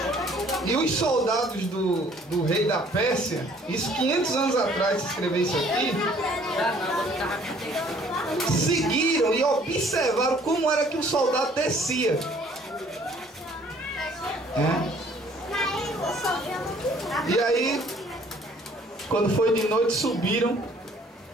E os soldados do rei da Pérsia, isso 500 anos atrás, se escrever isso aqui, seguiram e observaram como era que o soldado descia. E aí, quando foi de noite, subiram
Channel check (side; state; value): both; normal; correlation 0.58